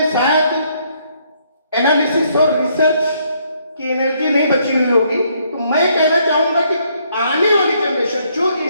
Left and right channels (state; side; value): inverted; both; correlation -0.70